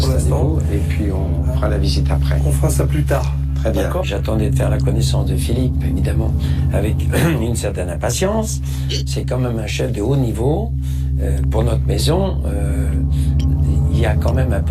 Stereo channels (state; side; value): identical; both; correlation 1.00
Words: l'instant. Installez-vous, et puis on fera la visite après. On fera ça plus tard. Très bien. D'accord. J'attendais de faire la connaissance de Philippe, évidemment, avec une certaine impatience. C'est quand même un chef de haut niveau. Pour notre maison, il y a quand même un